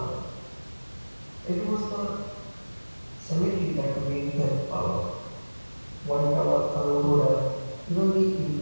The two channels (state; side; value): inverted; both; correlation -1.00